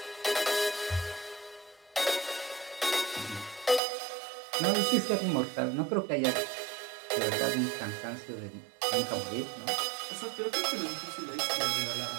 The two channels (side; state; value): left; drops out; at 3.8 s